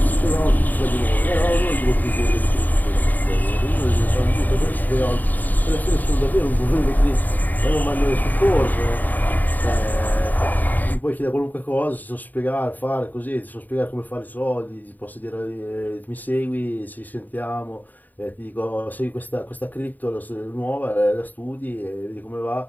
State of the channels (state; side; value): late; right; 0.085 ms